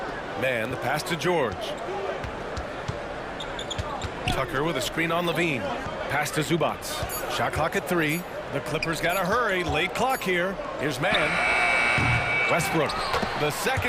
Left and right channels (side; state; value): both; identical; correlation 1.00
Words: Man, the pass to George. Tucker with a screen on Levine. Pass to Zubats. Shot clock at 3. The Clippers got to hurry. Late clock here. Here's man. Westbrook. The